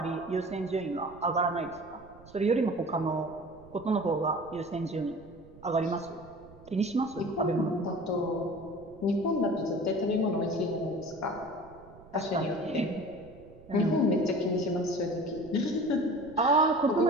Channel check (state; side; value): noise; right; rumble, 22 dB below the sound